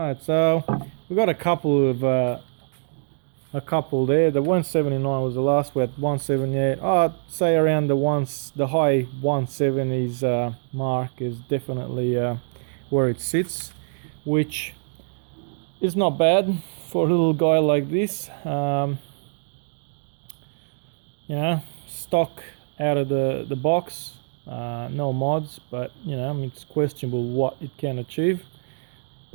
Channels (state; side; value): silent; left; digital silence